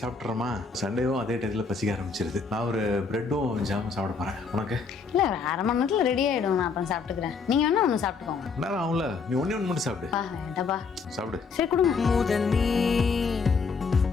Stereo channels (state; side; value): quieter; right; 5.0 dB